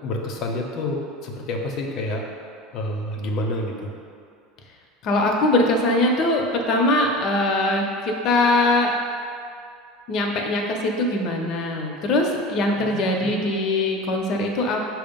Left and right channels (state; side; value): normal; both; correlation 0.33